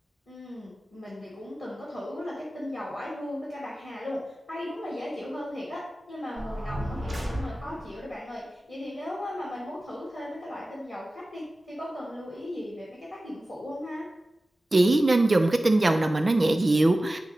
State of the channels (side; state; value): both; normal; correlation 0.96